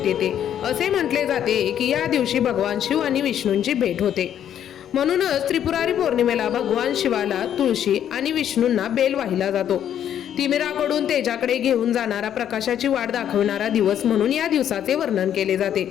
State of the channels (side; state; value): right; quieter; 10.0 dB